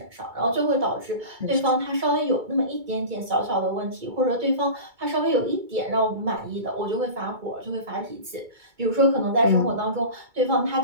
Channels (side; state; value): left; late; 2.2 ms